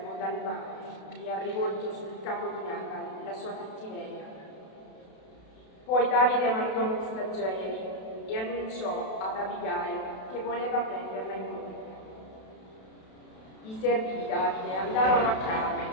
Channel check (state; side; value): late; right; 32 ms